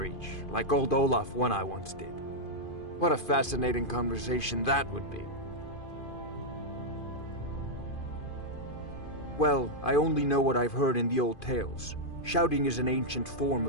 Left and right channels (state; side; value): late; right; 2.5 ms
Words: like old Olaf one I once did. What a fascinating conversation that would be. Well, I only know what I've heard in the old tales. Shouting is an ancient form